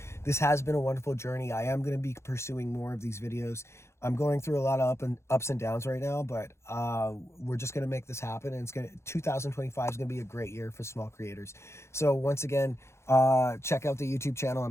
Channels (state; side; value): late; right; 0.13 ms